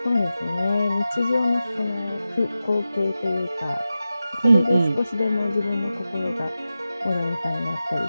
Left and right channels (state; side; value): inverted; both; correlation -0.93